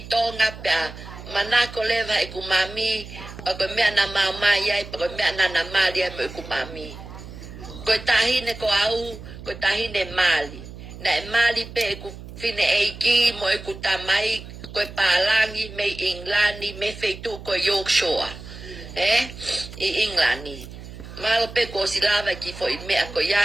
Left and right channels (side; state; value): right; noise; hum, 14 dB below the sound